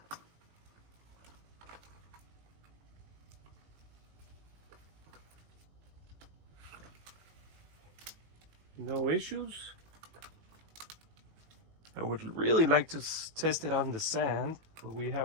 No issues. I would really like to test it on the sand, but we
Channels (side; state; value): left; late; 19 ms